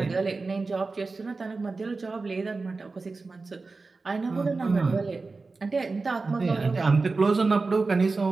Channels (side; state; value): left; quieter; 3.9 dB